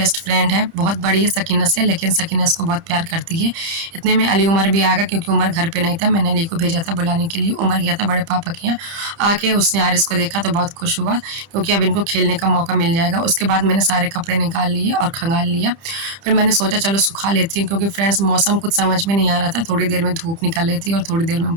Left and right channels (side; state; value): left; late; 30 ms